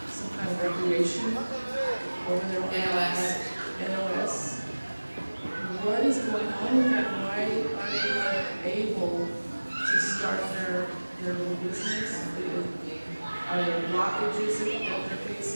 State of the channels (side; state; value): both; inverted; correlation -1.00